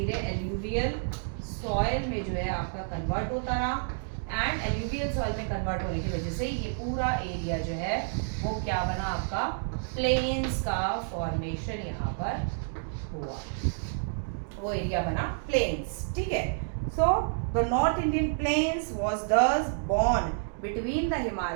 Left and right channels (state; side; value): silent; left; digital silence